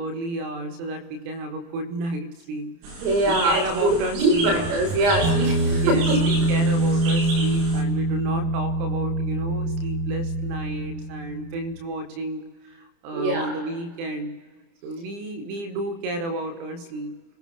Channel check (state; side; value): late; left; 30 ms